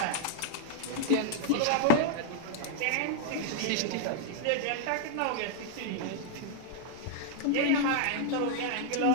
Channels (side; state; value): both; different; correlation -0.01